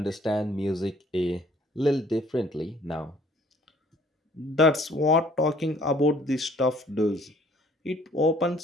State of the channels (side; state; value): both; normal; correlation 0.58